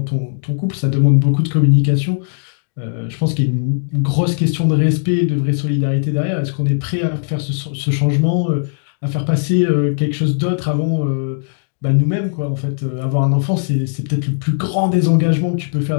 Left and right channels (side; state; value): right; silent; digital silence